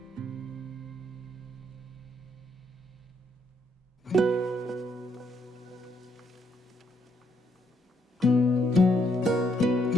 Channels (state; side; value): normal; both; correlation 0.73